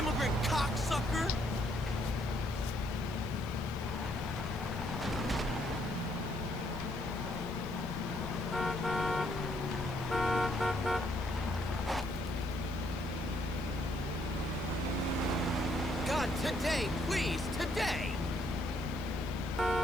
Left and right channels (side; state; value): left; noise; hiss, 23 dB below the sound